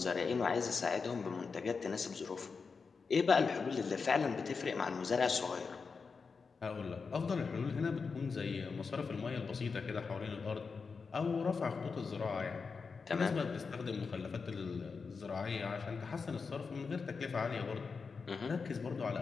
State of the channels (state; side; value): quieter; right; 5.0 dB